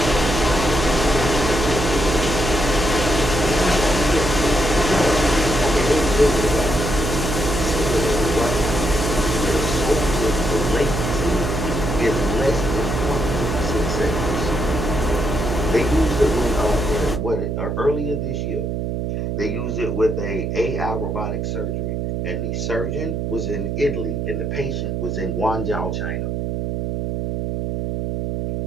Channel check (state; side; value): noise; right; hum, 2 dB below the sound